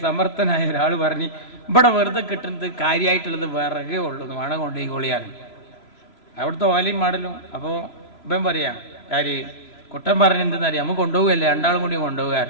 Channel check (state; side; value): late; right; 3.0 ms